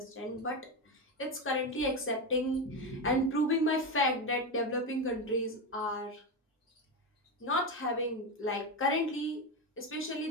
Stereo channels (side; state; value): both; normal; correlation 0.14